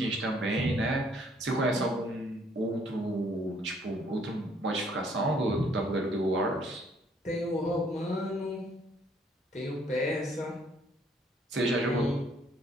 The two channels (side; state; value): both; normal; correlation 0.64